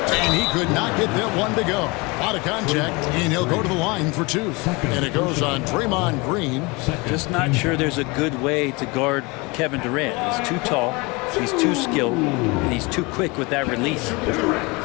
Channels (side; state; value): right; quieter; 26.3 dB